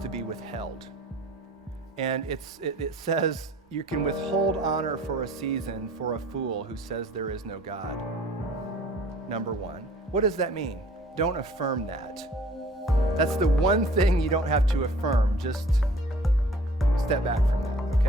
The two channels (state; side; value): normal; both; correlation 0.51